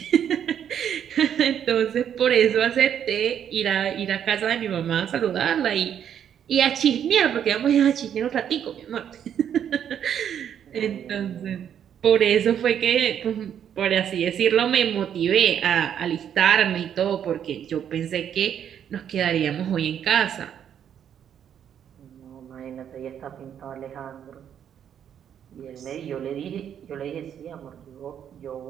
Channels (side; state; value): left; quieter; 9.1 dB